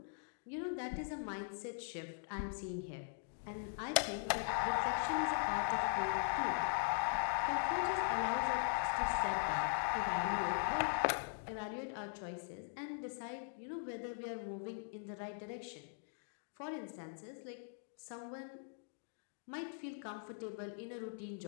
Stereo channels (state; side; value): silent; right; digital silence